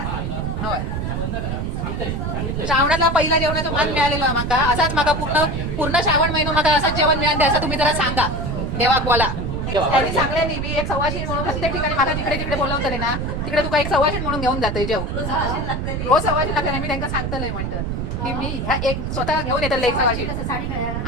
होय. श्रावणातला पहिला जेवणाचा मान मिळालेला माका असाच माका पूर्ण पूर्ण श्रावण महिना माका असंच जेवण मिळाले असं तुम्ही जरा सांगा देवाक बोला. त्यांनी सांगले नाही मी एक सवाशीण म्हणून प्रत्येक ठिकाणी माका जिकडे जिकडे बोलवतले ना तिकडे तुका एक सवाशीण म्हणून घेऊन जाते जेव रोज सवाशीण लागते. मी त्यांना सांगतलंय म्हणतं की मी ह्या एक स्वतः घेऊन येतले एक सवाशीण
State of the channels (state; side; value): noise; right; rumble, 2 dB below the sound